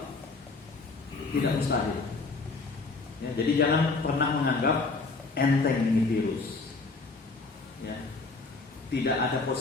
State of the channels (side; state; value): right; quieter; 3.8 dB